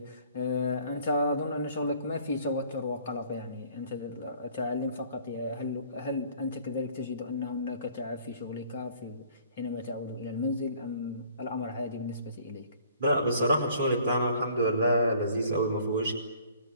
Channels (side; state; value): both; inverted; correlation -0.55